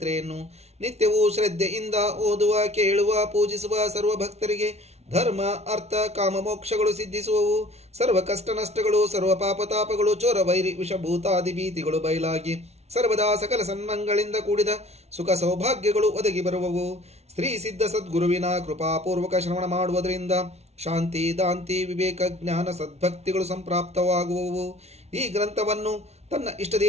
ನಿತ್ಯವೂ ಶ್ರದ್ಧೆಯಿಂದ ಓದುವ, ಕೇಳುವ, ಪೂಜಿಸುವ ಸರ್ವ ಭಕ್ತರಿಗೆ ಧರ್ಮ, ಅರ್ಥ, ಕಾಮ, ಮೋಕ್ಷಗಳು ಸಿದ್ಧಿಸುವವು. ಸರ್ವ ಕಷ್ಟ ನಷ್ಟಗಳು, ಸರ್ವ ಪಾಪತಾಪಗಳು, ಚೋರ ವೈರಿ ವಿಷಭೂತಾದಿ ಭೀತಿಗಳು ಬಯಲಾಗಿ ಸರ್ವದಾ ಸಕಲ ಸನ್ಮಂಗಳಿಂದ ಕೂಡಿದ ಸುಖ ಸೌಭಾಗ್ಯಗಳು ಒದಗಿ ಬರುವವು. ಶ್ರೀ ಸಿದ್ಧ ಸದ್ಗುರುವಿನ ಕೃಪಾಪೂರ್ವಕ ಶ್ರವಣ ಮಾಡುವುದರಿಂದ ಶಾಂತಿ, ದಾಂತಿ, ವಿವೇಕ, ಜ್ಞಾನ, ಸದ್ಭಕ್ತಿಗಳು ಸಂಪ್ರಾಪ್ತವಾಗುವವು. ಈ ಗ್ರಂಥವನ್ನು ತನ್ನ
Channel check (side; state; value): left; late; 0.31 ms